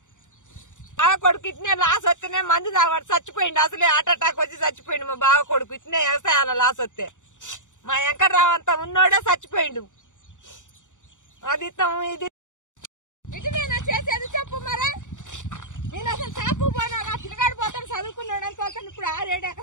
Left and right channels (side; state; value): right; late; 0.86 ms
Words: బావ కొడుకు ఇట్నే లాస్ వస్తేనే మందు తాగబడి చచ్చిపోయిండు. అసలే హార్ట్ అటాక్ వచ్చి చచ్చిపోయిండు మా బావ కొడుకు. ఇట్నే వ్యవసాయాల లాస్ వస్తే మా వెంకట్రావు అంతా ఉన్నోడే చచ్చిపోయిండు. అది ఇది ఇటునేనా చేసేది చెప్పు మరి. నేను అసలు షాపు పోనా, నా పిల్లగాడు పోతాను చదువుకున్నాడు అనుకోతాను. ఇప్పుడు 6-7